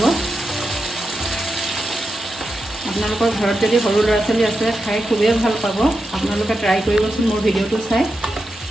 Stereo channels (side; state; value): both; normal; correlation 0.88